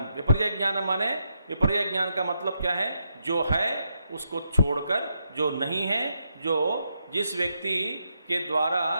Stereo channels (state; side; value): inverted; both; correlation -0.81